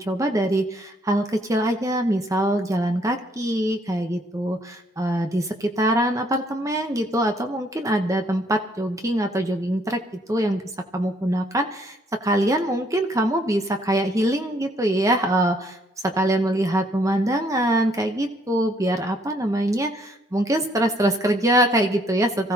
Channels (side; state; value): both; normal; correlation 0.66